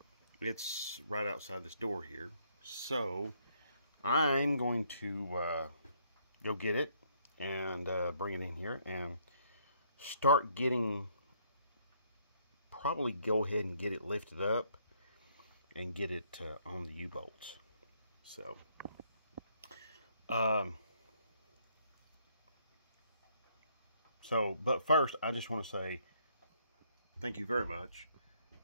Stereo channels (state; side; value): inverted; both; correlation -0.68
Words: It's right outside this door here. So I'm going to go get it and bring it in here and start getting, probably go ahead and get it lifted up and get it on the U-bolts. So but first, I just want to say thank you very much